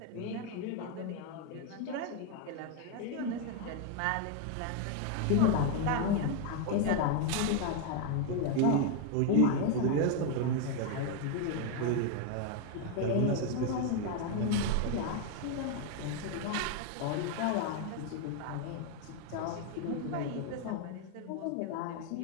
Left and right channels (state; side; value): different; both; correlation 0.01